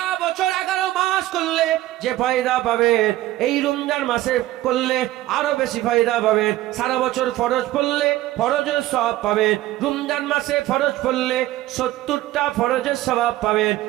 বছর 11 মাস করলে যে ফায়দা পাবেন, এই রমজান মাসে করলে আরো বেশি ফায়দা পাবেন। সারা বছর ফরজ পড়লে ফরজের সওয়াব পাবেন। রমজান মাসে ফরজ পড়লে 70টা ফরজের সওয়াব পাবেন।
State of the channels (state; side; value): quieter; left; 15.6 dB